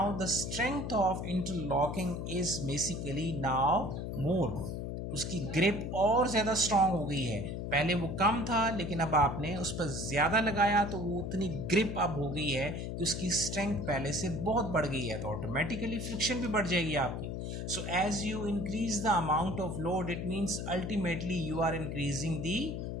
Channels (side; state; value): left; noise; hum, 4 dB below the sound